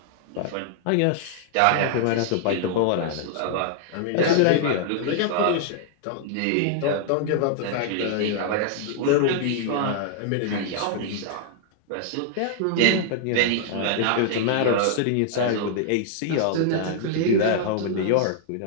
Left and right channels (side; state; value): both; different; correlation -0.01